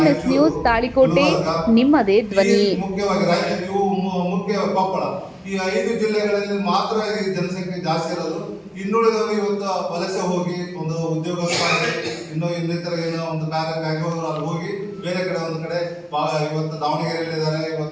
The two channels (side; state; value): both; identical; correlation 1.00